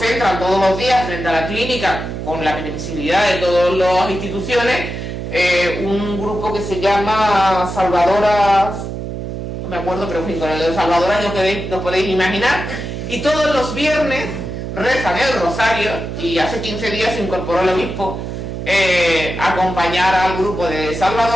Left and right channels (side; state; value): right; noise; hum, 6 dB below the sound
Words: todos los días frente a la clínica, con la permisibilidad de todas las instituciones, un grupo que se llama Salvadoras, no me acuerdo, pero en fin, con el de Salvadoras no podéis imaginar, y todos los viernes rezan el rosario, y hace 15 días se incorporó el obispo a acompañar al grupo de